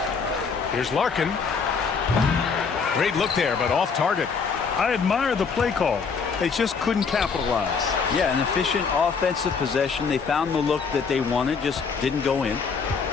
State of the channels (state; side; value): quieter; right; 5.5 dB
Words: Here's Larkin. Great look there, but off target. I admire the play call. They just couldn't capitalize. Yeah, an efficient offensive possession. They found the look that they wanted, just didn't go in.